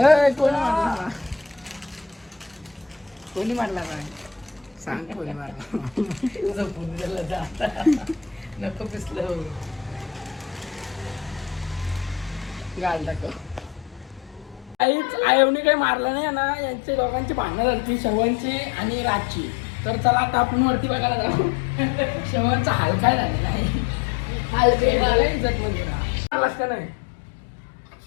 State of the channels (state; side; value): drops out; right; at 14.8 s